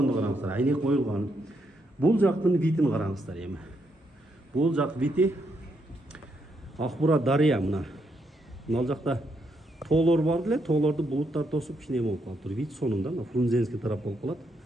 караңыздар, айнек коюлган. Бул жактын видин караңыздар эми. Бул жак види Акбура дарыя мына. Мына жакта тоолор бар эле, тоолорду булуттар тосуп кичине болуп калыптыр. Вид сонунда мына Фрунзенский тарап болуп калат.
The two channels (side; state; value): both; normal; correlation 0.78